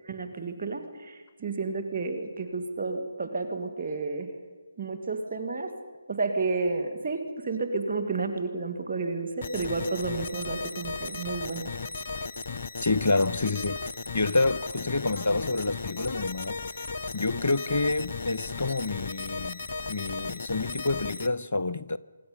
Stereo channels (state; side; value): inverted; both; correlation -0.75